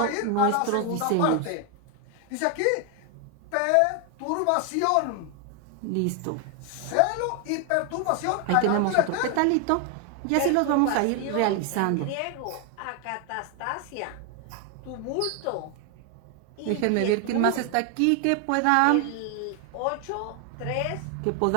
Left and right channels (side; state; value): both; different; correlation 0.00